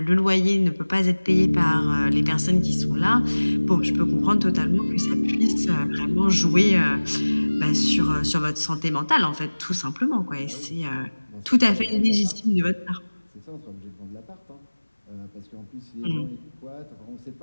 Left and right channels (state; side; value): inverted; both; correlation -1.00